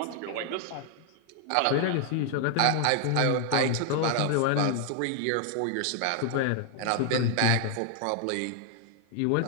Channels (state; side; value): different; both; correlation 0.00